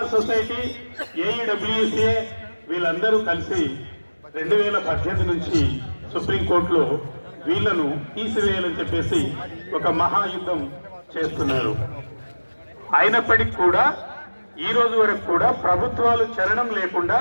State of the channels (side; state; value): both; inverted; correlation -1.00